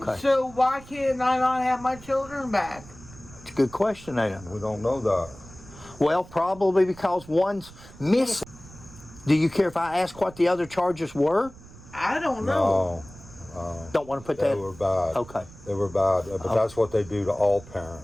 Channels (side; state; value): right; noise; rumble, 19 dB below the sound